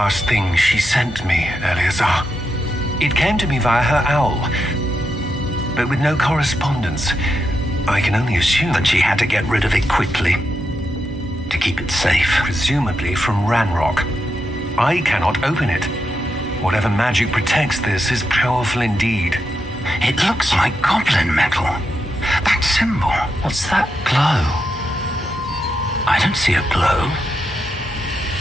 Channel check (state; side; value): normal; both; correlation 0.85